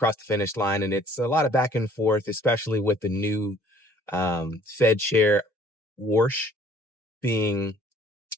the finish line. And it's a lot of back and forth, especially with the new Fed chair, Warsh, being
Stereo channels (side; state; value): both; normal; correlation 0.57